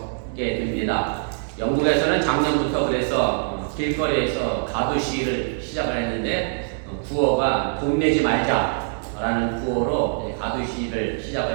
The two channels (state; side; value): silent; left; digital silence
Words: 됩니다. 영국에서는 작년부터 그래서 길거리에서 가두 시위를 시작을 했는데 구호가 돈 내지 말자라는 구호로 가두 시위를